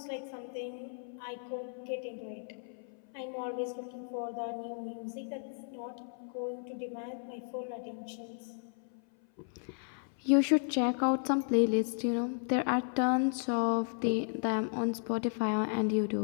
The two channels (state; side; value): silent; right; 55 dB below the other